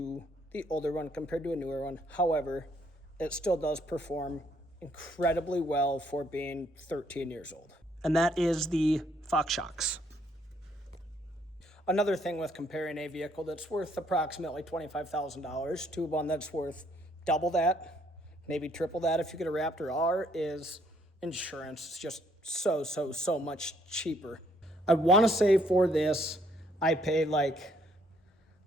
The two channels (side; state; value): both; normal; correlation 0.68